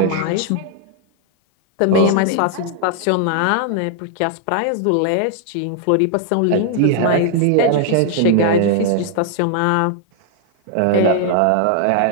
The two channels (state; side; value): different; both; correlation 0.00